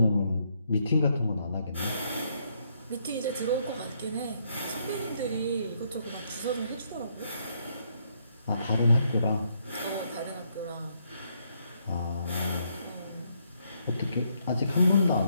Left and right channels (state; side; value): inverted; both; correlation -0.74